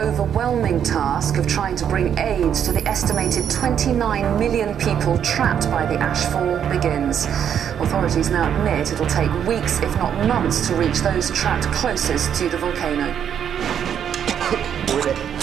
overwhelming task of trying to bring aid to the estimated 29 million people trapped by the ashfall begins. Authorities now admit it'll take weeks, if not months, to reach those trapped closest to the volcano. We're going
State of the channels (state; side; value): quieter; left; 8.7 dB